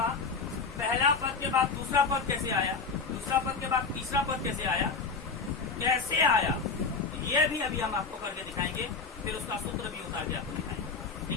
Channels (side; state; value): right; quieter; 4.8 dB